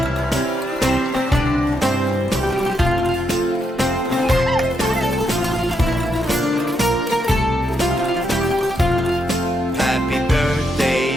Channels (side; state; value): both; normal; correlation 0.79